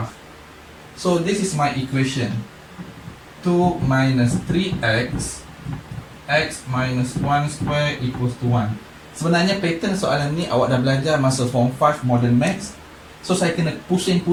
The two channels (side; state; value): both; identical; correlation 1.00